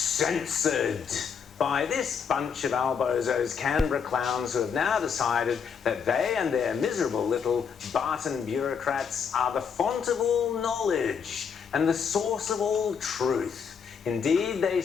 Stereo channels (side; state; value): right; quieter; 6.7 dB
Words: by this bunch of albozos, Canberra clowns, who have now decided that they and their miserable little Barton bureaucrats are the font of all knowledge and the source of all truth. Indeed, they